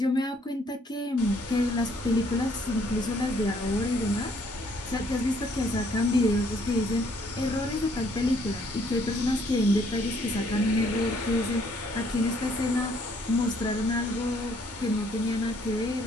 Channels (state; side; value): normal; both; correlation 0.65